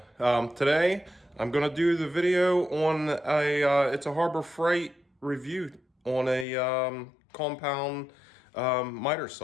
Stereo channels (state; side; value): drops out; right; at 6.5 s